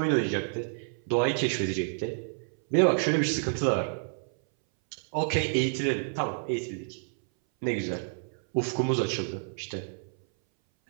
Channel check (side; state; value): left; silent; 59 dB below the other